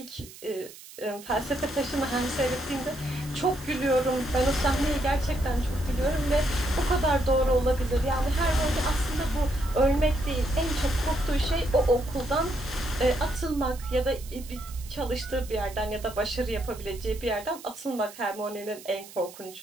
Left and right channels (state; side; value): noise; right; hiss, 18 dB below the sound